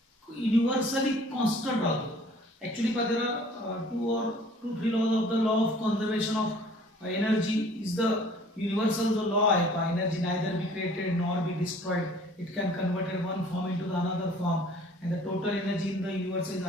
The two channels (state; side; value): normal; both; correlation 0.52